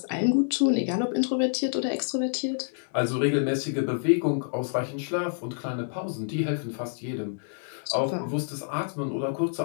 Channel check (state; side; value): silent; right; digital silence